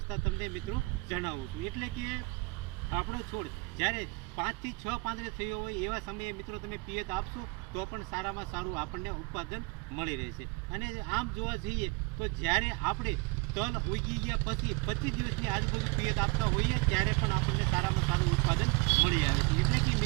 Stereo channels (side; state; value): left; quieter; 27.3 dB